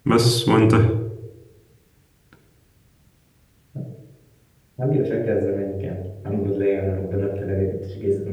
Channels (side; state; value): both; identical; correlation 1.00